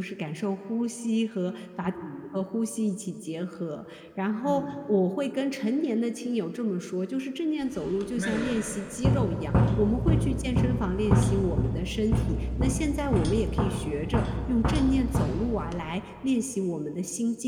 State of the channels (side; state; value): both; identical; correlation 1.00